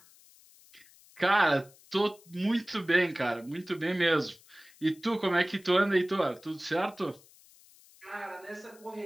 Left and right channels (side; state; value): left; noise; hiss, 26 dB below the sound